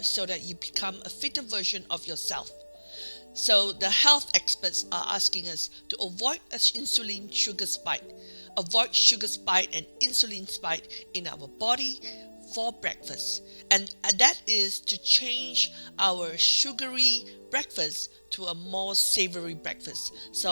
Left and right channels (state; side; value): inverted; both; correlation -1.00